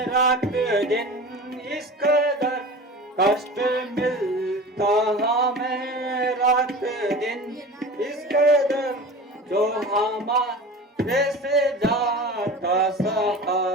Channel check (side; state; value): both; normal; correlation 0.35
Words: रात दिन इस कदर, कष्ट मिलता हमें रात दिन इस कदर, जो हमारे से जाता